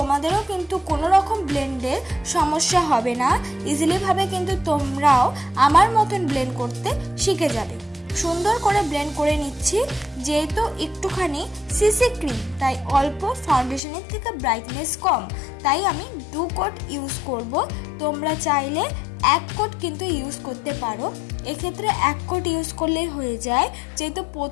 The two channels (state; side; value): drops out; right; at 13.8 s